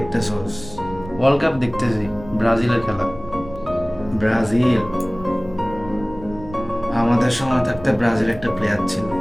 ওয়ার্ল্ড কাপ দেখতেছি, ব্রাজিলের খেলা। ব্রাজিল? আমাদের সময় থাকতে ব্রাজিল একটা প্লেয়ার ছিল,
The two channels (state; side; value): noise; right; rumble, 16 dB below the sound